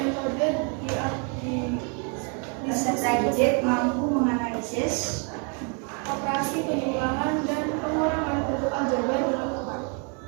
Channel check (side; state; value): left; quieter; 37.8 dB